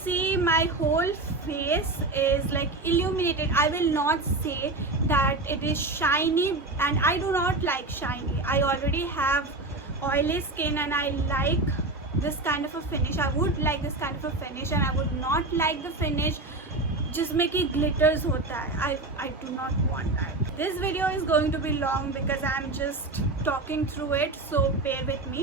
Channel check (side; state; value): left; quieter; 3.0 dB